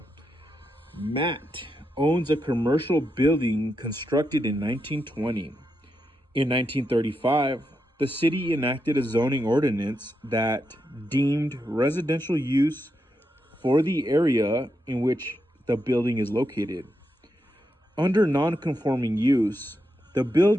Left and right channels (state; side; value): normal; both; correlation 0.84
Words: Matt owns a commercial building constructed in 1920. In 1935, the city enacted a zoning ordinance that deemed residential use for the area in which the building is located. Under non-conforming use, the